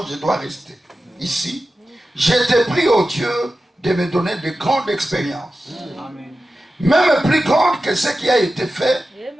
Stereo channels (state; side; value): normal; both; correlation 0.93